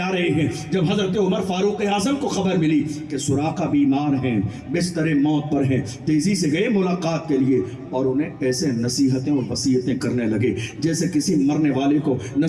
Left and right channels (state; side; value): identical; both; correlation 1.00